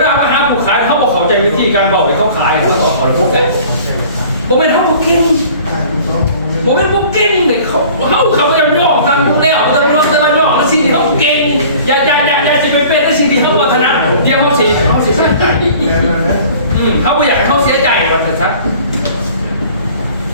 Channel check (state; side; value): inverted; both; correlation -0.47